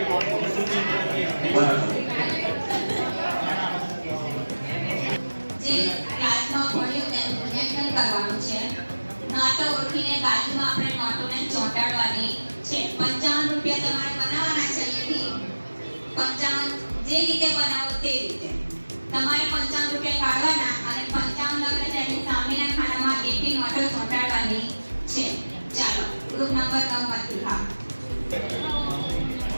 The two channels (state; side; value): inverted; both; correlation -1.00